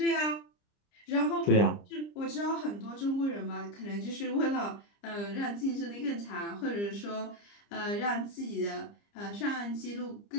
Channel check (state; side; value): late; right; 30 ms